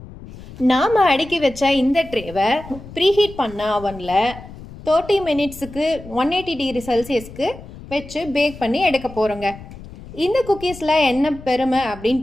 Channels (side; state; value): left; noise; rumble, 16 dB below the sound